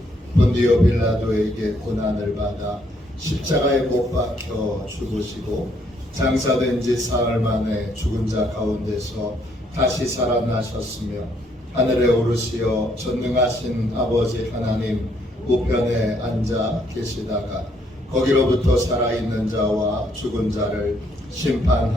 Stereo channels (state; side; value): normal; both; correlation 0.70